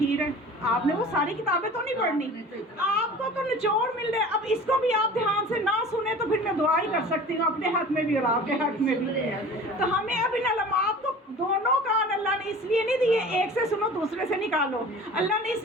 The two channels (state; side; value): normal; both; correlation 0.41